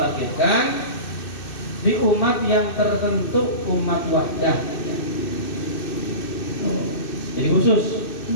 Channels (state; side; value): late; right; 2.6 ms